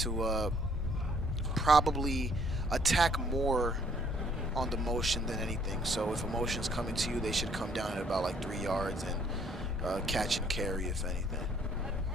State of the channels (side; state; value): both; normal; correlation 0.64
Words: probably attack more on the motion than anything. So if a motion's coming to you, they should come down at about like 3 yards and catch and carry, if anything.